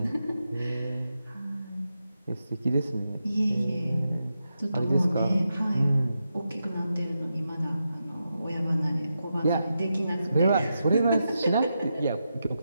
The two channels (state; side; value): inverted; both; correlation -0.87